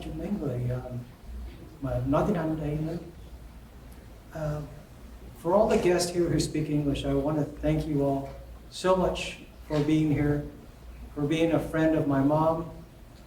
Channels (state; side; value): identical; both; correlation 1.00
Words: cho mấy người mà nói tiếng Anh đây nữa. For all the guests here who speak English, I want to thank you all so much for being here, for being a friend of my mom,